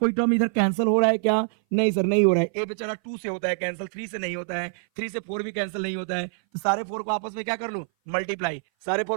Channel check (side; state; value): left; silent; 58 dB below the other